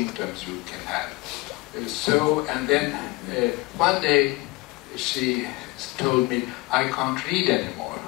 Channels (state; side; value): quieter; right; 23.2 dB